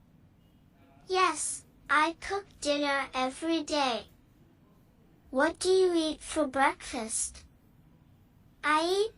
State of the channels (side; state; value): both; identical; correlation 1.00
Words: Yes, I cook dinner every day. What do you eat for breakfast? I